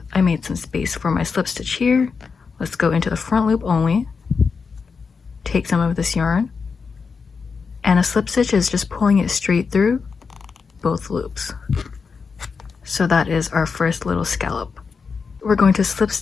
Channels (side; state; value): right; quieter; 5.3 dB